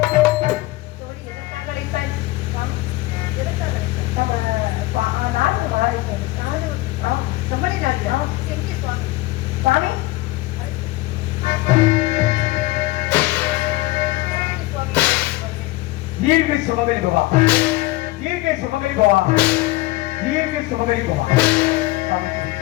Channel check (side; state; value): right; quieter; 19.5 dB